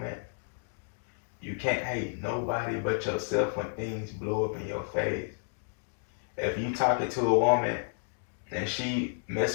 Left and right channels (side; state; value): right; silent; digital silence